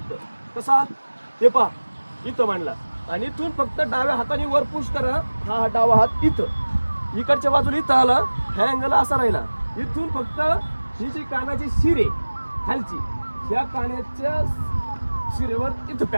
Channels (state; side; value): inverted; both; correlation -1.00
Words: कसा ते पहा, इथं मांडला आणि इथून फक्त डाव्या हाताने वर पुश करा. हा डावा हात इथं, इकडच्या बाजूला इथं आला, ह्या अँगल असा राहिला. इथून फक्त ही जी कानाची शिर आहे खालची, ह्या कानाच्या शिरेवर इथं